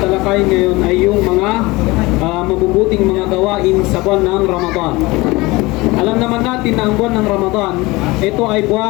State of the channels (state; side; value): quieter; right; 22.0 dB